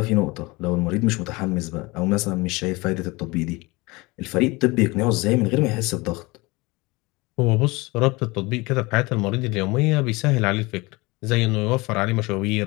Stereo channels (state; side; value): quieter; right; 23.8 dB